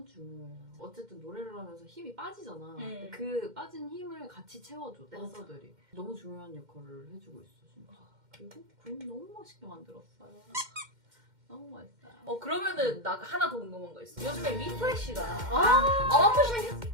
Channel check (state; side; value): late; left; 2.1 ms